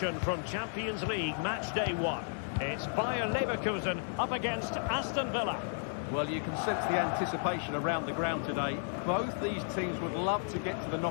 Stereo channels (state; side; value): silent; right; digital silence